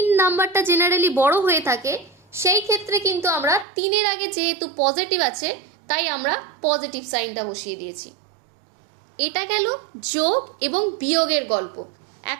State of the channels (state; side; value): drops out; left; at 3.7 s